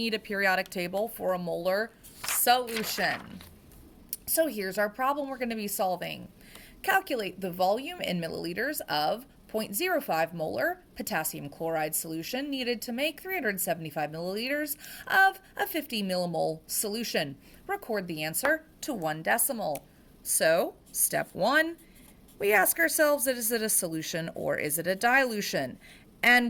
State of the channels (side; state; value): both; identical; correlation 1.00